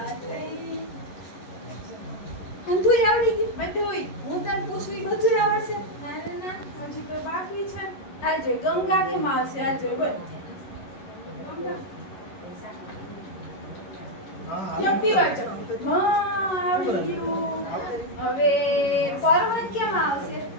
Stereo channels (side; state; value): right; late; 11 ms